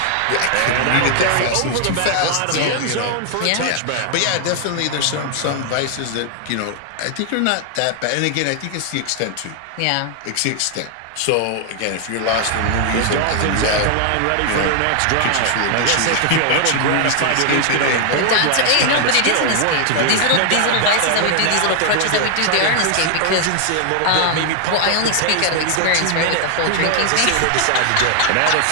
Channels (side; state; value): both; different; correlation 0.00